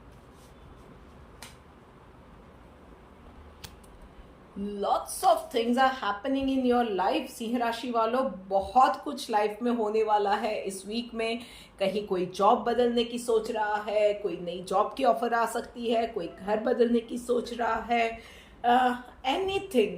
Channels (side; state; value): both; identical; correlation 1.00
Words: lots of things are happening in your life. सिंह राशि वालों, बहुत कुछ लाइफ में होने वाला है इस वीक में। कहीं कोई जॉब बदलने की सोच रहा है, कोई नई जॉब की ऑफर आ सकती है, कोई घर बदलने की सोच रहा है,